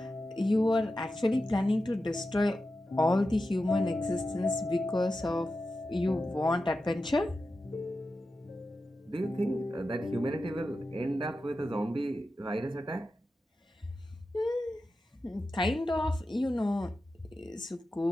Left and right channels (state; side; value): normal; both; correlation 0.91